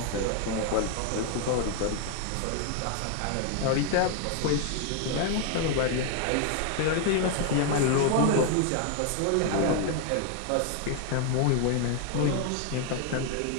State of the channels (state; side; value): different; both; correlation 0.00